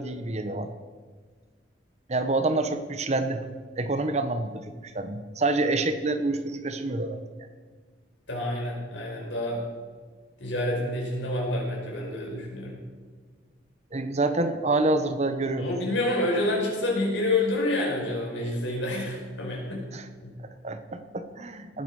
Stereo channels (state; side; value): normal; both; correlation 0.32